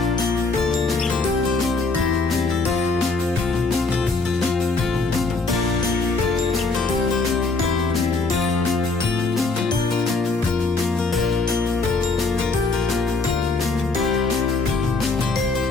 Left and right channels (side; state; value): right; quieter; 3.7 dB